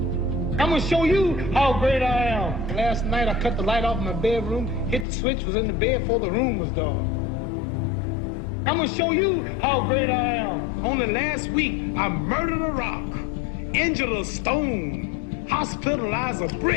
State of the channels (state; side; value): drops out; right; at 5.1 s